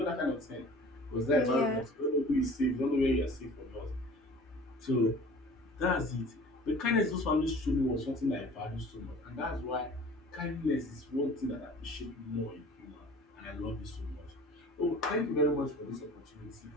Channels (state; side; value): normal; both; correlation 0.45